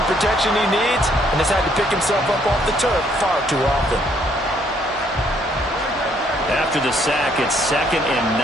protection he needs and has had to pick himself up off the turf far too often. After the sack, it's 2nd and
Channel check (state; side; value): normal; both; correlation 0.67